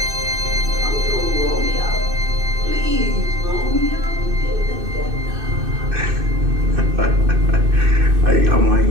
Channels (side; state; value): left; late; 2.6 ms